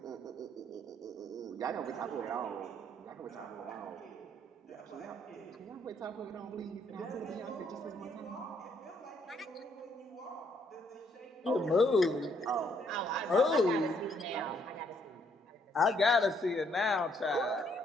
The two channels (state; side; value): normal; both; correlation 0.70